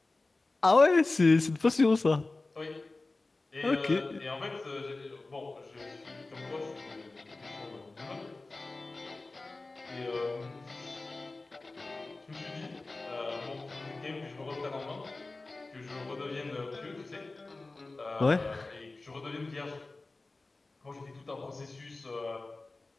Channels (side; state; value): right; quieter; 3.3 dB